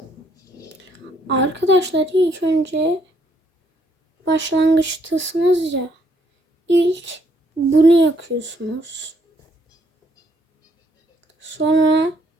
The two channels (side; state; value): both; normal; correlation 0.69